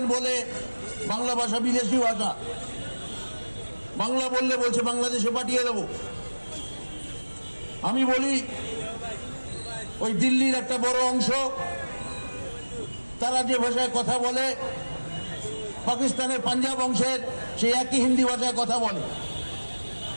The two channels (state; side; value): inverted; both; correlation -1.00